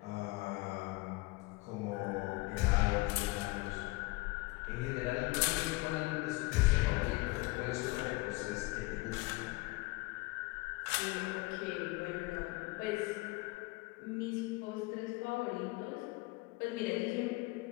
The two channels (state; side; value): quieter; right; 22.9 dB